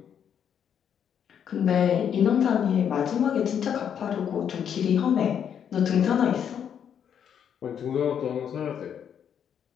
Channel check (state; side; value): quieter; right; 8.4 dB